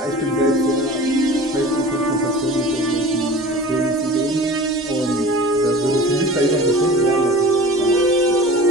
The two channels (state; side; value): normal; both; correlation 0.39